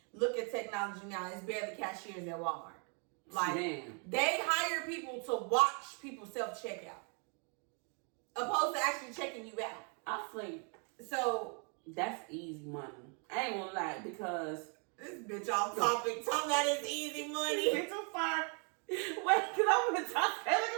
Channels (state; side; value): quieter; left; 38.1 dB